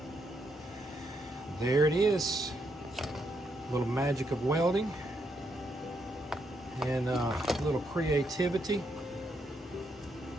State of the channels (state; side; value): normal; both; correlation 0.78